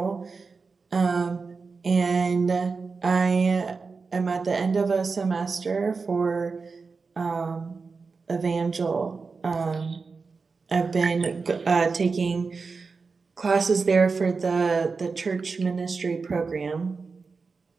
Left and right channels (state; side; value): quieter; left; 4.6 dB